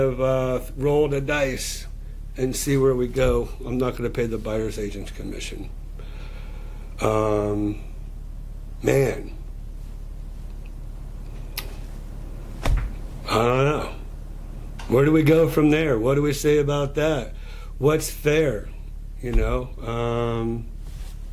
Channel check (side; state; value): both; identical; correlation 1.00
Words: roll the dice and see where we go. I'm not going to pay the buyer's agent's commission. Man, I don't know. Where do we go from there? What do we say about that? What's fair? You know,